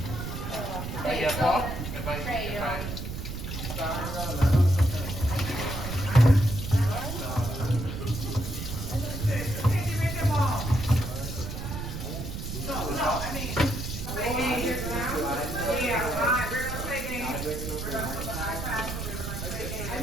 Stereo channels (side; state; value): right; noise; rumble, 6 dB below the sound